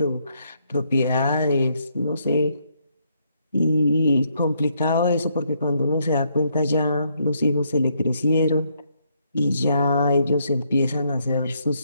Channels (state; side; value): inverted; both; correlation -0.74